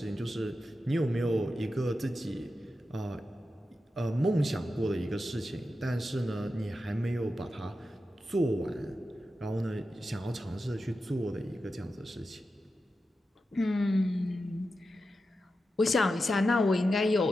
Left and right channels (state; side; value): normal; both; correlation 0.90